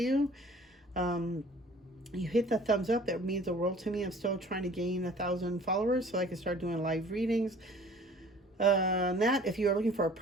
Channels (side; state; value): both; normal; correlation 0.51